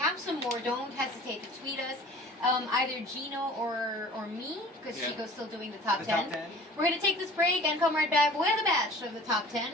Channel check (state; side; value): normal; both; correlation 0.46